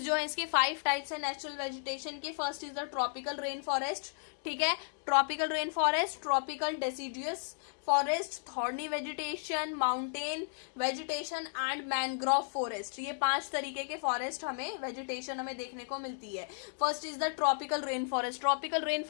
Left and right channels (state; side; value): silent; right; digital silence